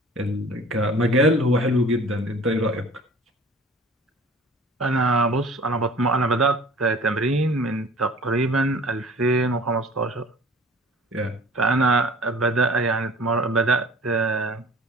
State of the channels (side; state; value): both; normal; correlation 0.46